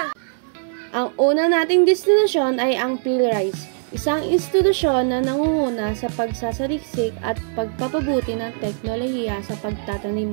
Ang una nating destinasyon ay ang PhilRice, isang institusyon na nangunguna sa pagsasaliksik at pagpapabuti ng teknolohiya sa pagtatanim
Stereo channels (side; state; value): left; silent; digital silence